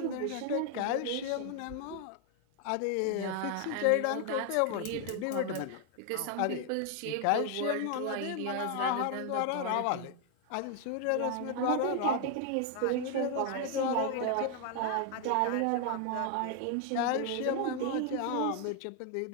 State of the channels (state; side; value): different; both; correlation 0.00